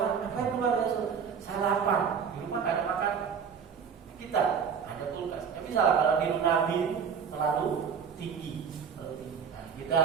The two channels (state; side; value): quieter; left; 6.8 dB